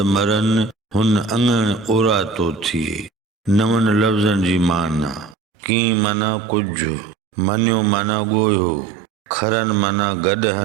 मरन हुन अङण ओरा तो थिए। नवन लफ़्ज़नि जी माना। की माना कुछ, मनियो माना ॻोयो, खरन माना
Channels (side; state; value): left; drops out; at 5.4 s